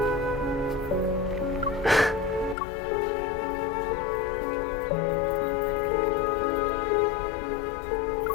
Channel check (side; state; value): right; drops out; at 2.6 s